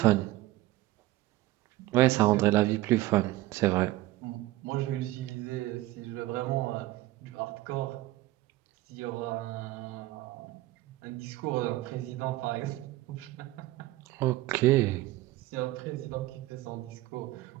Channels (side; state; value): left; quieter; 17.4 dB